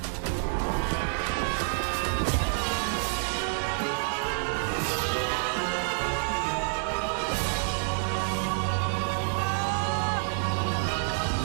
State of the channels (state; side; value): silent; left; digital silence